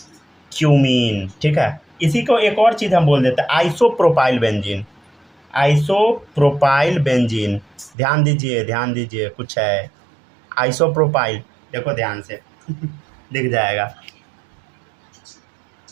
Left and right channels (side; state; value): left; drops out; at 7.9 s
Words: क्यूमीन, ठीक है। इसी को एक और चीज़ हम बोल देते हैं, आइसोप्रोपाइल बेंजीन, आइसोप्रोपाइल बेंजीन, ध्यान दीजिए कुछ है आइसोप्रोपाइल, देखो ध्यान से दिख जाएगा।